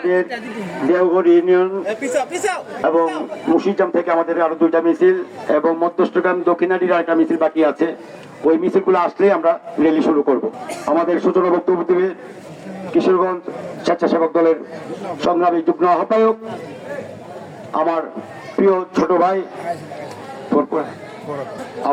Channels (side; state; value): both; identical; correlation 1.00